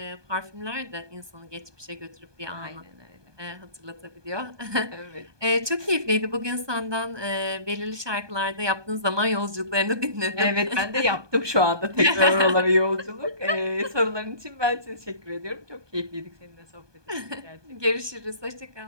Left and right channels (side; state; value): left; late; 1.2 ms